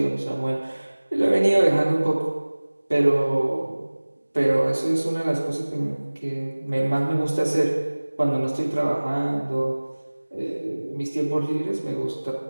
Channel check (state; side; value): inverted; both; correlation -1.00